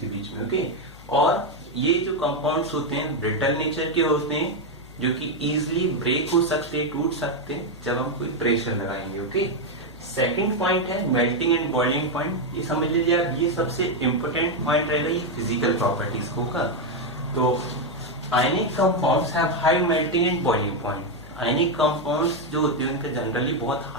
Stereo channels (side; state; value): left; noise; hum, 20 dB below the sound